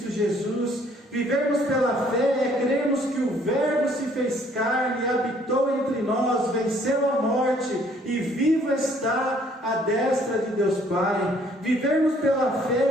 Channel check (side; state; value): both; normal; correlation 0.62